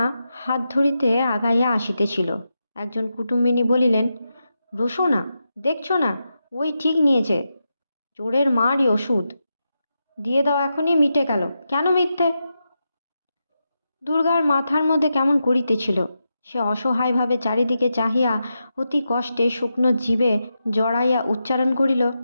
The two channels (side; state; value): both; inverted; correlation -0.88